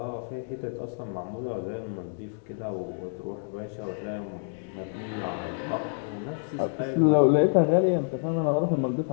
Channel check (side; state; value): right; silent; digital silence